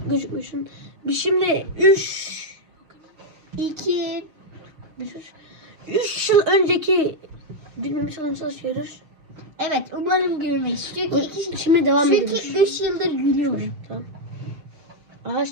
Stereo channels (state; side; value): late; left; 6.4 ms